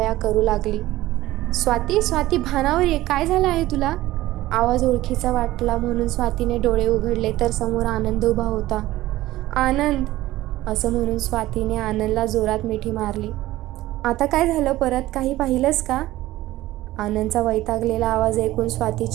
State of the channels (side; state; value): left; quieter; 16.3 dB